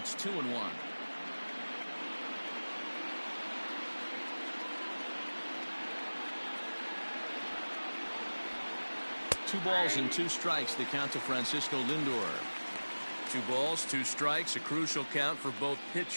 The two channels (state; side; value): inverted; both; correlation -1.00